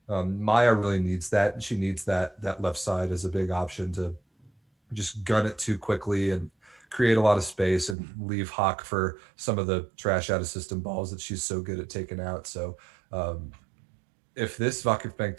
Maya really needs that. She needs that left side as a big option to just gun it too quickly and create a lot of space and leave Hawk for some of the trash out of system balls that she's so good at taking out. So um, if this Vakifbank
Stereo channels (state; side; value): drops out; left; at 8.0 s